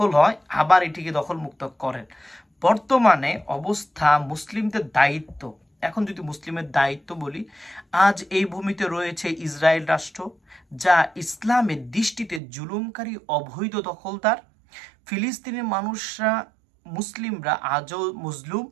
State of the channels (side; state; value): left; drops out; at 12.4 s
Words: হয়, আবার এটিকে দখলমুক্ত করেন। বর্তমানে অবস্থা মুসলিমদের দায়িত্ব। এখন যদি মুসলিমের দায়িত্ব বলি, আজ এই ভূমিতে রয়েছে ইসরায়েল রাষ্ট্র, যা ইসলামের দৃষ্টিতে জুলুমকারী অবৈধ দখলদার। ফিলিস্তিনের মানুষরা, মুসলিমরা আজও মজলুম।